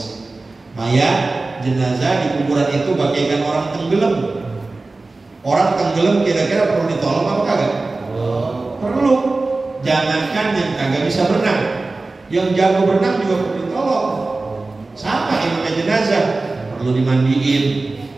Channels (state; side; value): quieter; left; 3.4 dB